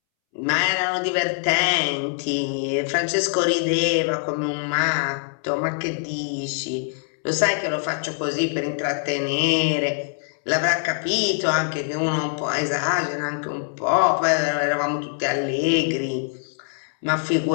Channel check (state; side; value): silent; right; 63 dB below the other